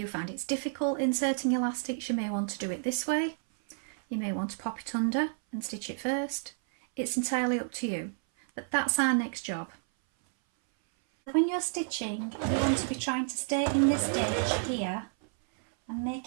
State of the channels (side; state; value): left; silent; 57 dB below the other